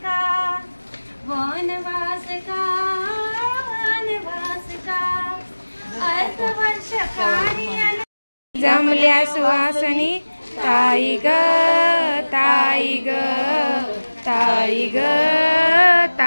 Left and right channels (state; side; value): inverted; both; correlation -1.00